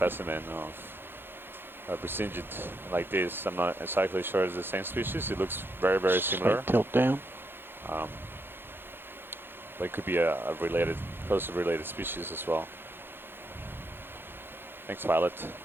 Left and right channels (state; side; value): late; left; 0.10 ms